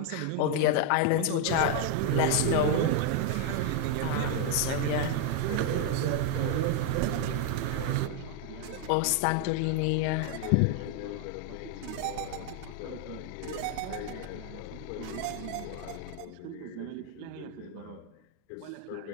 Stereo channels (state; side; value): different; both; correlation 0.00